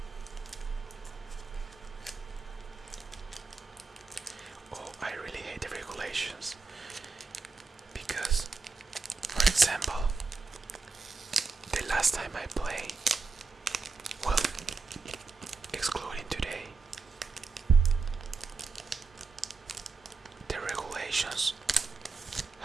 Oh, I really hate the regulations because, for example, the last time I played, well, excluding today, the regulations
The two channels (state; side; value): quieter; left; 4.4 dB